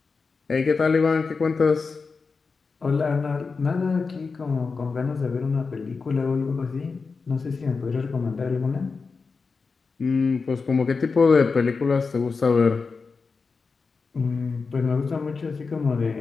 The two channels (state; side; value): quieter; right; 4.7 dB